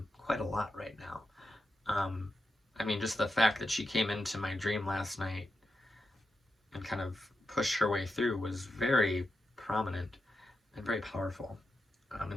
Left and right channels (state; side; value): normal; both; correlation 0.87